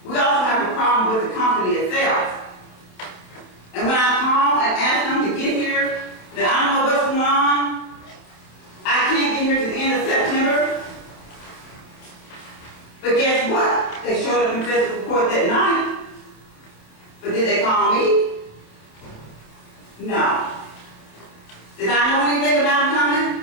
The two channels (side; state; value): right; late; 27 ms